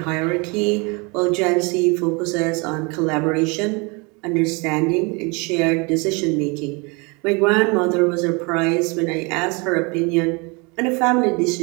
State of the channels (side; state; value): left; quieter; 29.3 dB